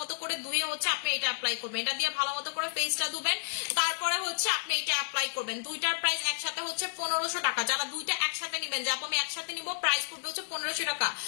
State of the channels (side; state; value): right; silent; 57 dB below the other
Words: করে ধুয়ে হচ্ছে আপনি এটা অ্যাপ্লাই করবেন, এটা দিয়ে ভালো মতো করে ফেসটা ধুবেন, তারপরে হচ্ছে আপনি এটা অ্যাপ্লাই করবেন। দুইটার প্রাইস একসাথে হচ্ছে 1500 টাকা। যারা দুইটা একসাথে নেবেন, যাবো আমি একসাথে নিব, প্রাইস পড়বে হচ্ছে 1500 টাকা।